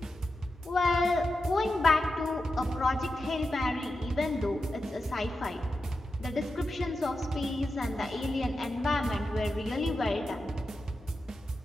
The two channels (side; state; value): both; normal; correlation 0.89